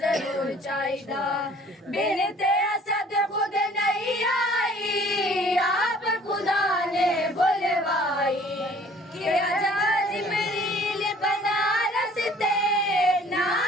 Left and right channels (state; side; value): normal; both; correlation 0.54